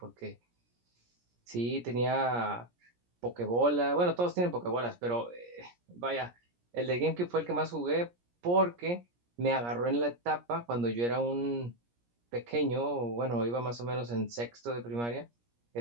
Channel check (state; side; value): late; left; 17 ms